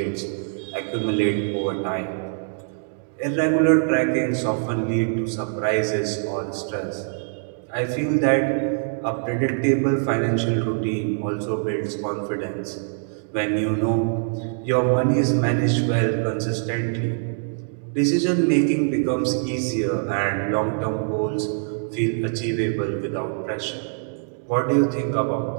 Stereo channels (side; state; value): left; silent; digital silence